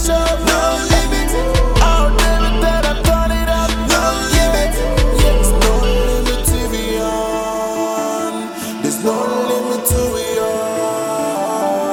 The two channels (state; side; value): identical; both; correlation 1.00